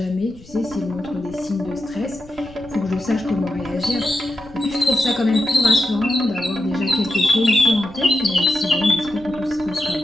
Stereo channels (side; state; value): left; noise; rumble, 23 dB below the sound